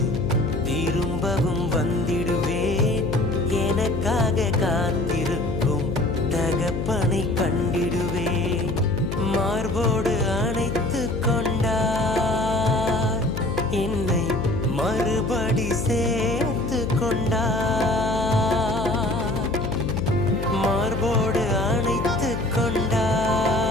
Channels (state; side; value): noise; left; hum, 4 dB below the sound